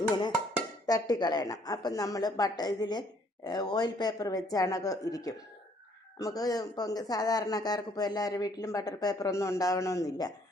ഇങ്ങനെ തട്ടിക്കളയണം. അപ്പം നമ്മൾ ഇതിൽ ഓയിൽ പേപ്പർ വെച്ചാണൊക്കെ ഇരിക്കും. നമുക്ക് ഇപ്പം സാധാരണക്കാർക്ക് ഇപ്പോൾ എല്ലാവരുടെ വീട്ടിലും ബട്ടർ പേപ്പറൊന്നും ഉണ്ടാവണമെന്നില്ല.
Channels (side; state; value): both; normal; correlation 0.64